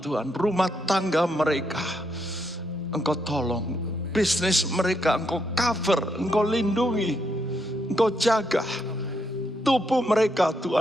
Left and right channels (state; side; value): normal; both; correlation 0.78